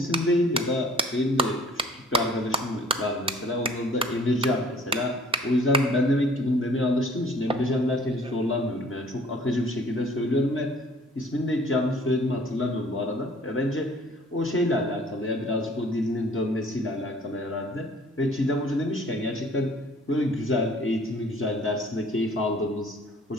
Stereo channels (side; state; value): both; normal; correlation 0.53